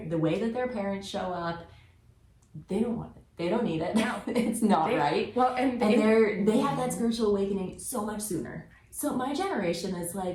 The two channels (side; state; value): both; identical; correlation 1.00